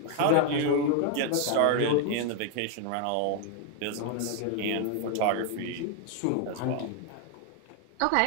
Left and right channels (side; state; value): both; different; correlation 0.01